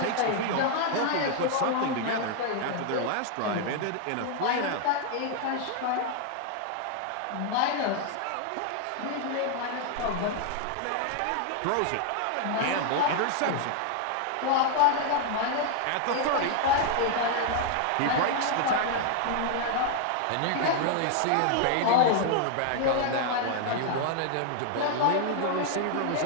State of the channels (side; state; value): both; different; correlation 0.00